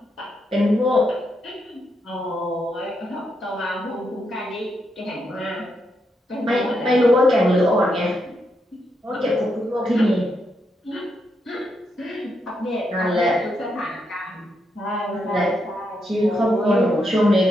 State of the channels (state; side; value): normal; both; correlation 0.81